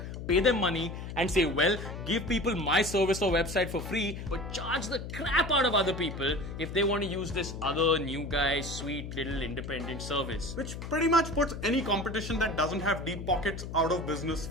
pay them money, and say, well, give people my service or website for free, But charge the crap out of other people if they want to use this other new guy, sweet little independent service. which pretty much puts any competition that doesn't have deep pockets out of business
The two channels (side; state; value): left; noise; hum, 8 dB below the sound